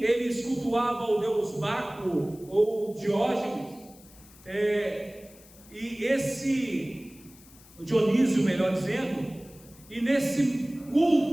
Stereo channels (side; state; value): left; noise; hiss, 24 dB below the sound